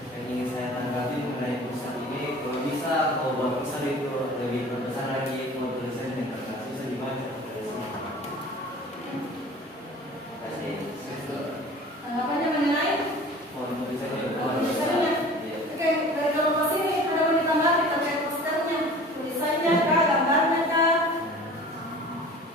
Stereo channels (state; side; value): normal; both; correlation 0.43